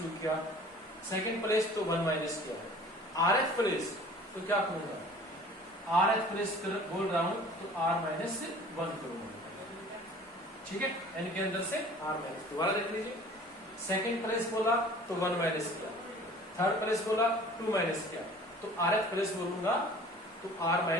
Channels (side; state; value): both; normal; correlation 0.47